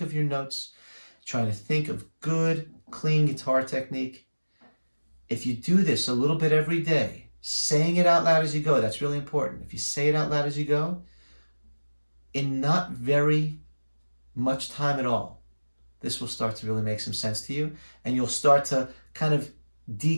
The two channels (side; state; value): both; inverted; correlation -1.00